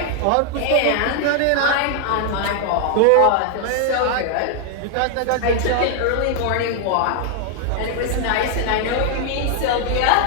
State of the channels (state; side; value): different; both; correlation 0.00